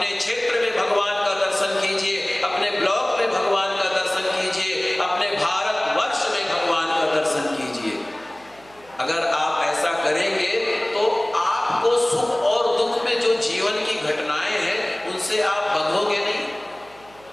क्षेत्र में भगवान का दर्शन कीजिए, अपने ब्लॉक में भगवान का दर्शन कीजिए, अपने भारतवर्ष में भगवान का दर्शन कीजिए। अगर आप ऐसा करेंगे तो आपको सुख और दुख में जो जीवन की घटनाएं हैं उनसे आप बंधोगे नहीं।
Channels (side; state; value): right; noise; hum, 27 dB below the sound